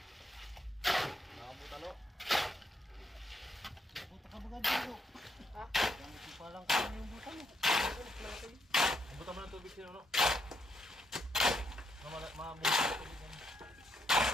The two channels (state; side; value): normal; both; correlation 0.75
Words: Buta mo ng tubig sino no? Mabuti ng tubig yan.